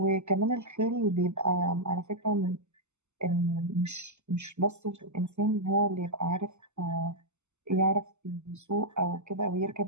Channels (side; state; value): left; late; 0.82 ms